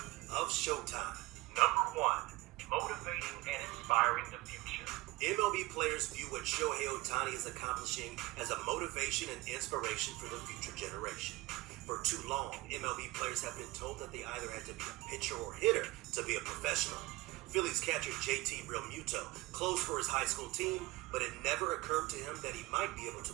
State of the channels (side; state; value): left; quieter; 20.8 dB